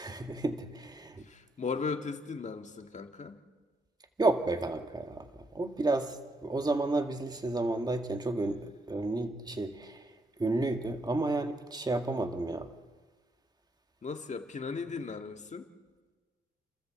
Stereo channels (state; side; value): normal; both; correlation 0.76